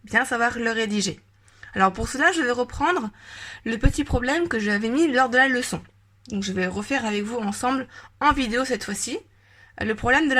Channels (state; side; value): identical; both; correlation 1.00